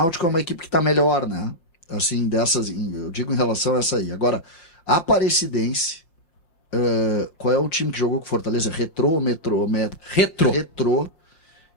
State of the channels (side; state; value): right; late; 5.7 ms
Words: é uma equipe que tá melhor, né? Assim, eu digo em relação a essa aí. Agora, a Aparecidense, qual é o time que jogou com Fortaleza? Retrô ou Metrô? Retrô.